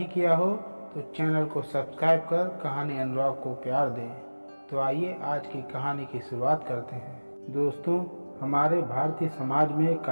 किया हो तो चैनल को सब्सक्राइब कर कहानी अनुराग को प्यार दें। तो आइए आज की कहानी की शुरुआत करते हैं। दोस्तों, हमारे भारतीय समाज में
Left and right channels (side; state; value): both; inverted; correlation -1.00